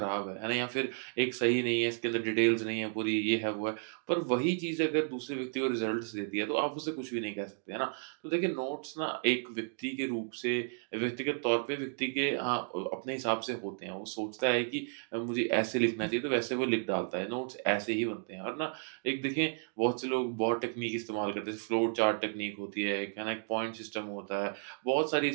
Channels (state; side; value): silent; left; 56 dB below the other